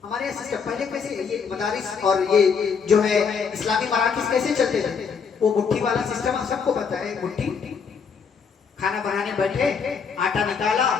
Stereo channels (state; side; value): quieter; right; 6.0 dB